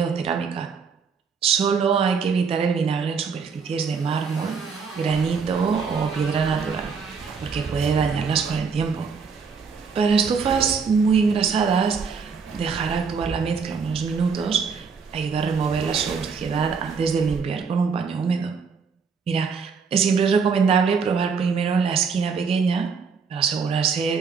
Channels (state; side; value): quieter; left; 5.6 dB